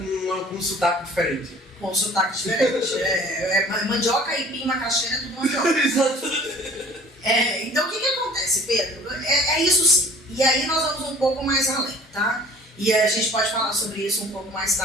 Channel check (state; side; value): normal; both; correlation 0.49